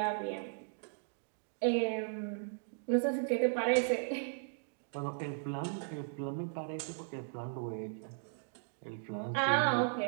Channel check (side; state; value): left; silent; digital silence